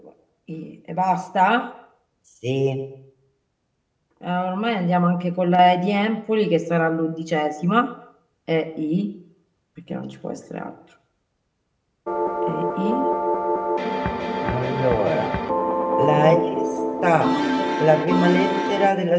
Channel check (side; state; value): both; identical; correlation 1.00